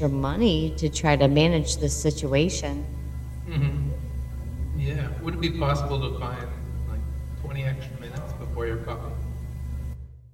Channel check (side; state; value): both; identical; correlation 1.00